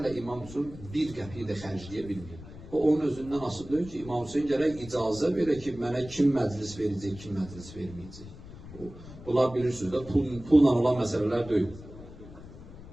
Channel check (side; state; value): left; noise; rumble, 16 dB below the sound